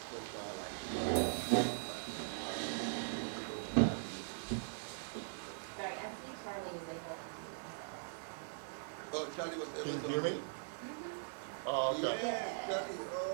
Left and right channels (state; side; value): silent; left; digital silence